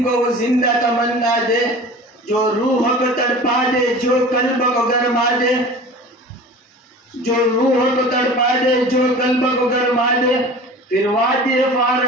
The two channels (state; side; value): normal; both; correlation 0.39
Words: को वो जिंदा तमन्ना दे। जो रूह को तड़पा दे जो कल्ब को गरमा दे, जो रूह को तड़पा दे जो कल्ब को गरमा दे। फिर वादी